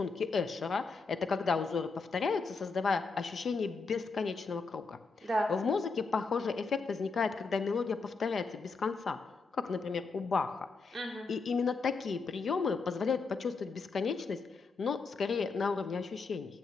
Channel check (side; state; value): right; quieter; 4.4 dB